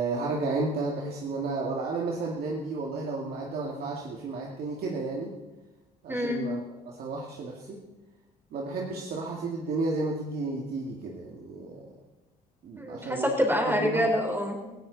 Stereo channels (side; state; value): both; normal; correlation 0.56